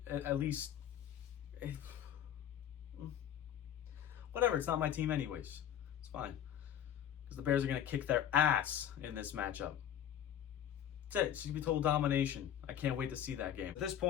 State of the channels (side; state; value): right; quieter; 10.0 dB